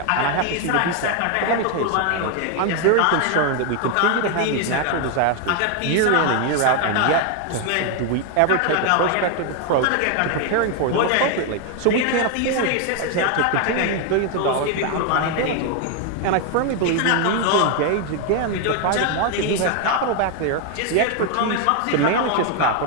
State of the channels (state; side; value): different; both; correlation 0.01